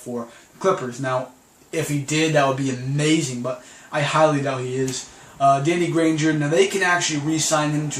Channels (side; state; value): both; identical; correlation 1.00